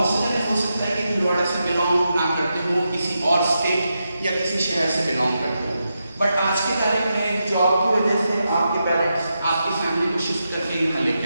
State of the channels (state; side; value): inverted; both; correlation -0.87